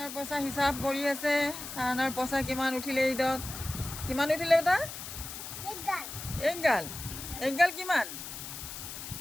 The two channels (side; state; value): left; noise; hiss, 9 dB below the sound